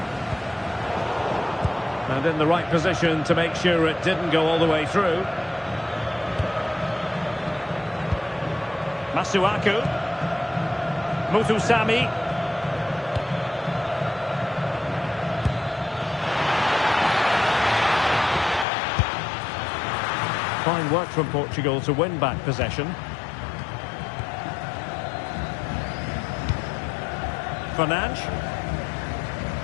And in the right position to make sure it didn't go all the way through. Masuaku. Muthusami. Fine work from Portugal to win back possession. Fernandes.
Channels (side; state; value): right; drops out; at 18.7 s